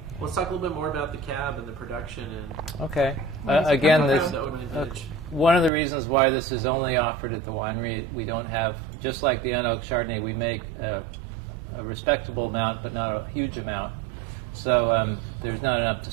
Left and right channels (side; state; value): left; drops out; at 5.7 s